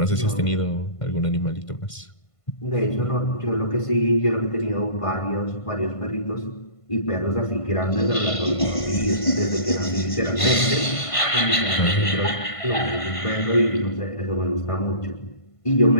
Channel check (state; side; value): late; right; 1.5 ms